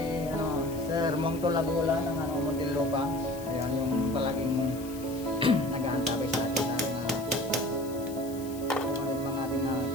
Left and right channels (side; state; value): left; noise; hiss, 17 dB below the sound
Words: Sir Mongto Lagula ng Muntinlupa, ayan, yung palaging nag-aantabay sa atin sa kung ano yung mga ating